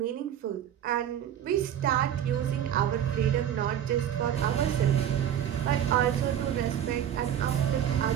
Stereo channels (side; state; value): left; quieter; 10.2 dB